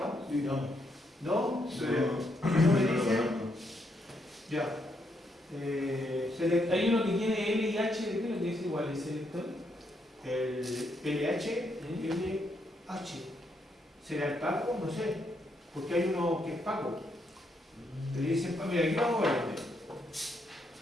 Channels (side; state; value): both; normal; correlation 0.77